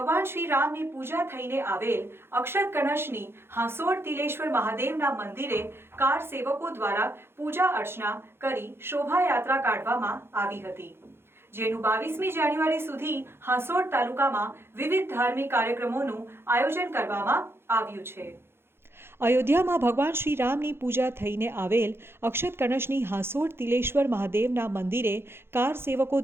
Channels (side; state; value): left; late; 0.11 ms